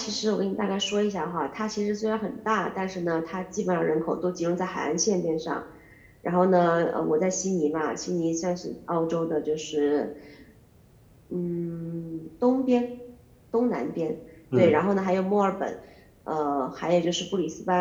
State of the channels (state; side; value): identical; both; correlation 1.00